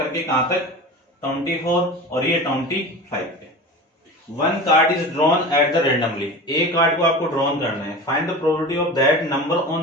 कहां तक, 24 और ये 25 पे। 1 card is drawn at the randomly, एक कार्ड को आपको ड्रॉन करना है। Find the probability of that number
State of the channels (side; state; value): both; normal; correlation 0.32